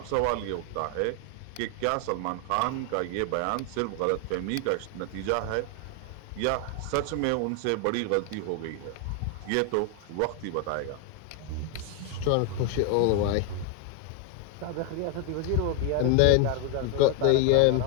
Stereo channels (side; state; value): both; different; correlation 0.01